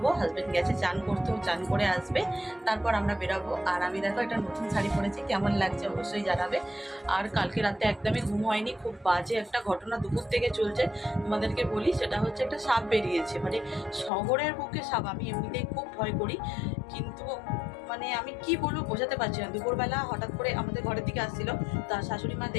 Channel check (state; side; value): drops out; right; at 14.1 s